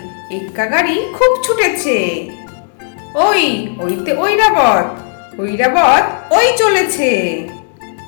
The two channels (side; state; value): right; silent; 59 dB below the other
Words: এক্কা গাড়ি খুব ছুটেছে। ওইতে ঐরাবত, ঐরাবত ওই চলেছে।